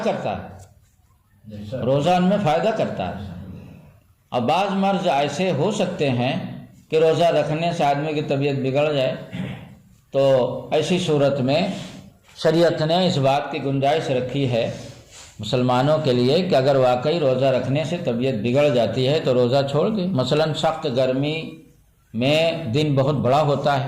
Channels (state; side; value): identical; both; correlation 1.00